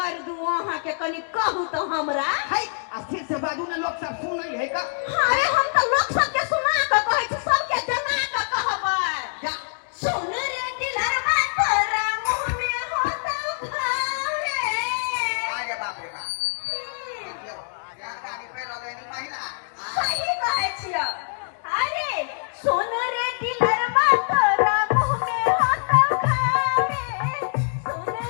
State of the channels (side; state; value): right; silent; digital silence